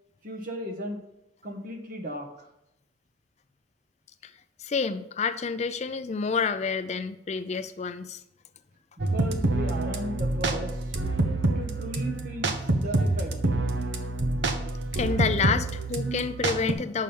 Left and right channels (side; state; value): both; normal; correlation 0.50